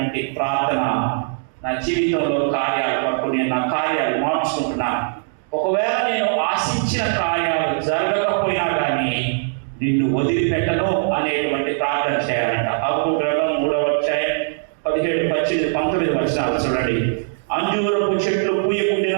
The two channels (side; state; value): left; silent; digital silence